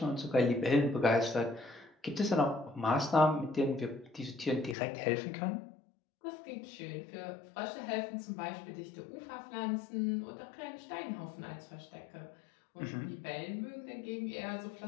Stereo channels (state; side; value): drops out; right; at 4.8 s